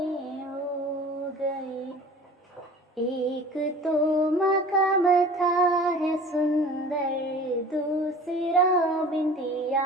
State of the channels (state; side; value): normal; both; correlation 0.43